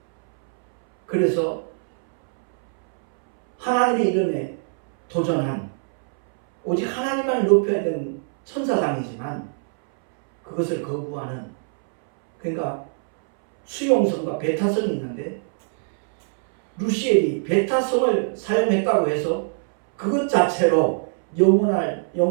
그래서 하나님의 이름에 도전한, 오직 하나님만 높여야 되는 천사장이지만 그것을 거부하는, 그러니까 수용성과 배타성이 있는데 루시엘이 배타성을 사용했다고 해서 그것 자체로 영원한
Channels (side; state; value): left; silent; 64 dB below the other